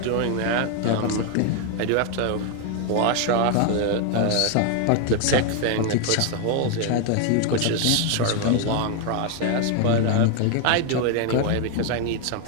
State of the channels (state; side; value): different; both; correlation 0.01